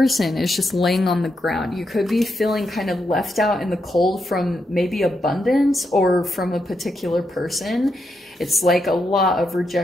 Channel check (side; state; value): both; normal; correlation 0.83